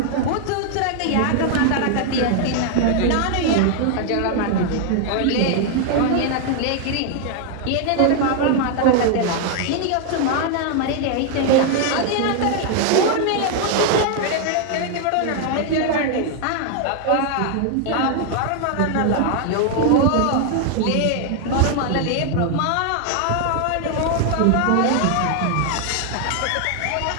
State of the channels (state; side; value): different; both; correlation 0.00